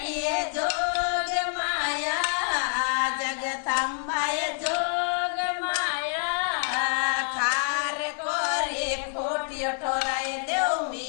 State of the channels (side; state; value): right; silent; digital silence